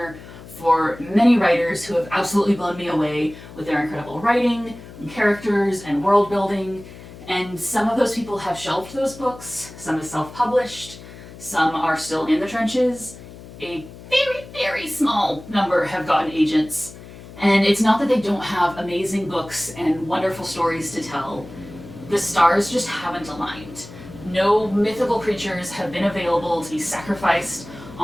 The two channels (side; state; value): left; noise; hum, 17 dB below the sound